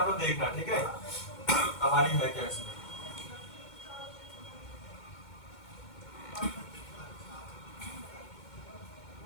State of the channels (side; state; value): right; late; 2.2 ms